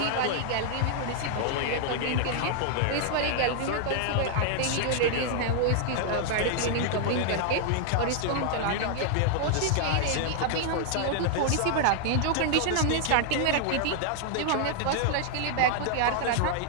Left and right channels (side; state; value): both; different; correlation 0.00